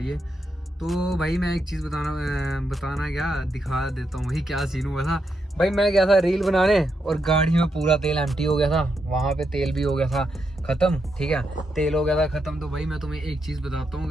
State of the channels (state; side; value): normal; both; correlation 0.82